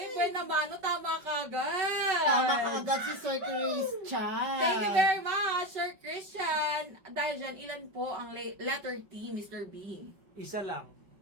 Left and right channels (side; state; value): left; late; 5.3 ms